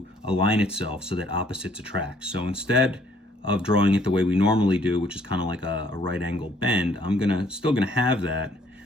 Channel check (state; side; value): normal; both; correlation 0.63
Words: align itself so that opposites attract. So instead of drawing it the way we normally do, which is kind of like a right angle bend, I'm still gonna have that,